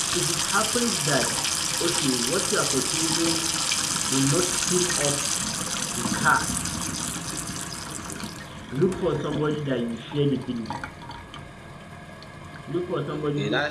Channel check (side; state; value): both; identical; correlation 1.00